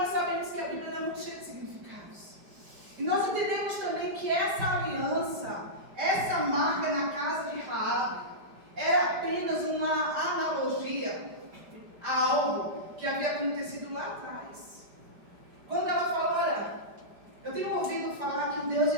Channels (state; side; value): late; left; 5.1 ms